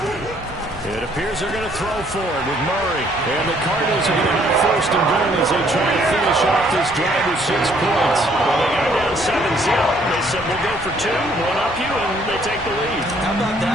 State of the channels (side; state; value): both; normal; correlation 0.64